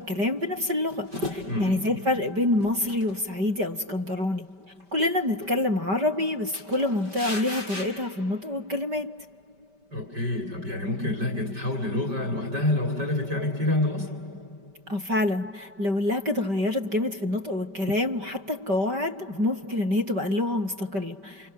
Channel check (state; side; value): late; left; 5.1 ms